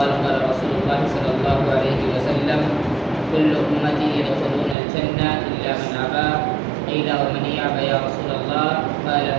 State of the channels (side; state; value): left; drops out; at 4.8 s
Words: قال رسول الله صلى الله عليه وسلم كل أمتي يدخلون الجنة إلا من أبى. قيل ومن يأبى يا رسول الله؟ قال